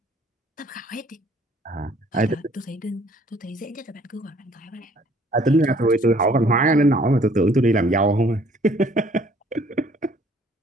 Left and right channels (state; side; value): normal; both; correlation 0.59